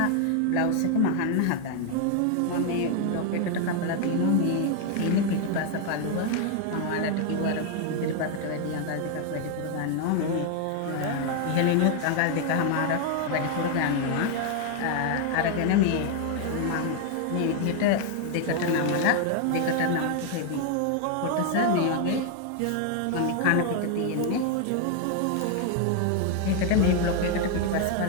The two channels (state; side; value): different; both; correlation 0.00